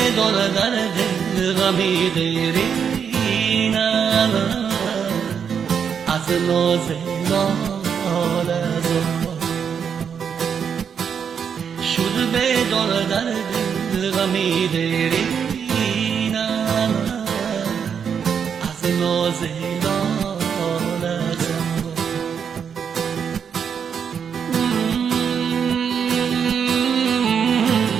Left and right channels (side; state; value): left; quieter; 7.2 dB